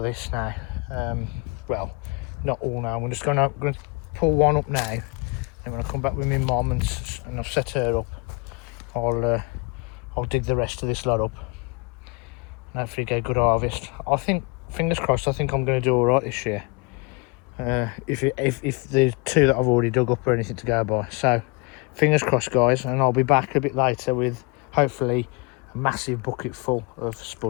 this now. Well, not all now. I'm just going to pull one up now. And when I come back with my mum and I've set her up, I'll dig the rest of this lot up and hopefully get a good harvest. I think, fingers crossed, I think I'm going to do all right this year. If the 2 that I've already dug up are anything to go by. So fingers crossed, guys, and I'll be back a bit later with hopefully a massive bucket full of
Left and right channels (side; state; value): right; quieter; 28.4 dB